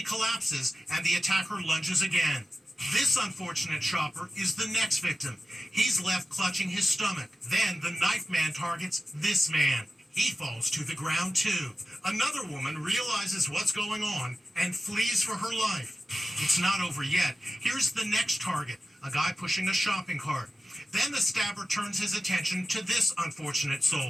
collapses and the attacker lunges again. This unfortunate shopper is the next victim. He's left clutching his stomach. Then the knife man targets this man. He falls to the ground too. Another woman realizes what's going on and flees for her life. It's not over yet. Here's the next target, a guy pushing a shopping cart. Then the stabber turns his attention to this unfortunate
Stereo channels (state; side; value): normal; both; correlation 0.92